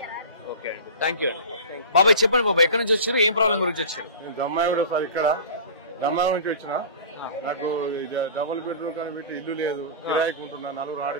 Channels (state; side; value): inverted; both; correlation -0.35